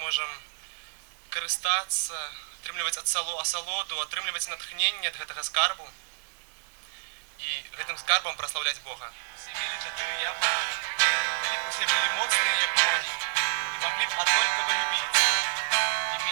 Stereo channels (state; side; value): silent; left; digital silence